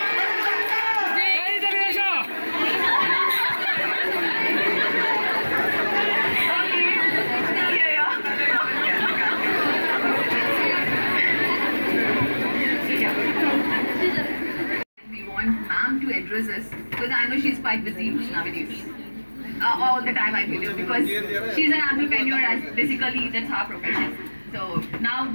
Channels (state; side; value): inverted; both; correlation -1.00